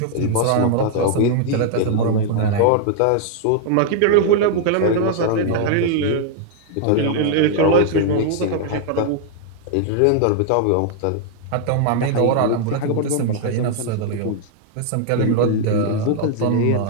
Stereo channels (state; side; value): different; both; correlation 0.00